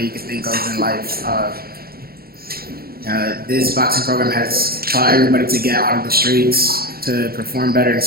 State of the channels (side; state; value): left; late; 0.44 ms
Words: you can think of in life. This boxing program has taught everybody to get out of the streets, to perform better